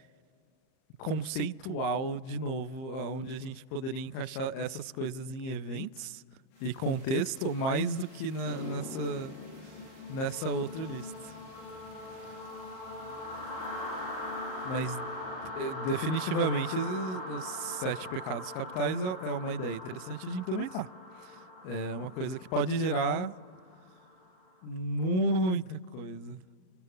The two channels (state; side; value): late; right; 38 ms